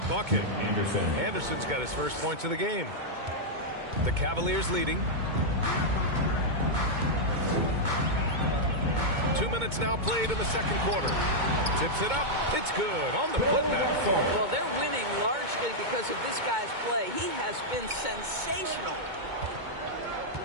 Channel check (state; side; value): late; left; 2.2 ms